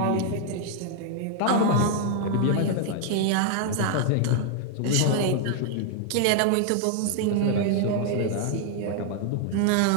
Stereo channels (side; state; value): both; different; correlation 0.00